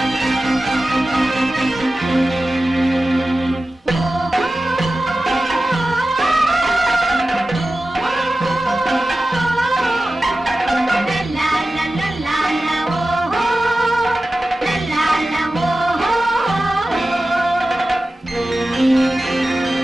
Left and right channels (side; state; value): both; normal; correlation 0.95